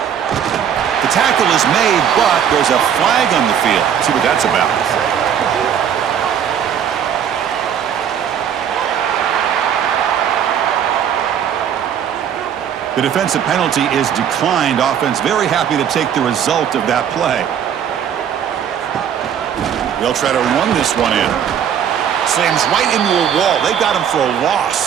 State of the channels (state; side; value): quieter; left; 8.7 dB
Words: tackle is made, but there's a flag on the field. Let's see what that's about. The defensive penalty is declined. Offense very happy to take the result of that play. They'll try to run this one in. Slams right into a wall. They got him for a